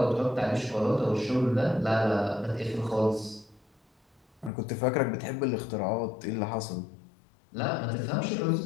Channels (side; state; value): right; drops out; at 4.5 s